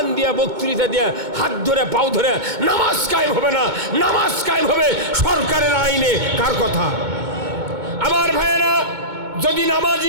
দিয়া, বক্তৃতা দিয়া, হাত ধরে পাও ধরে নামাজ কায়েম হবে না। নামাজ কায়েম হবে সরকারের আইনে, কার কথা? আমার ভাইয়েরা, যদি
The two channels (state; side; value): late; left; 2.2 ms